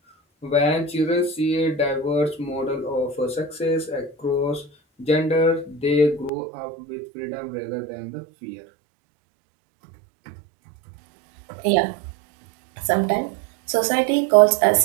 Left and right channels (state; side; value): drops out; left; at 6.3 s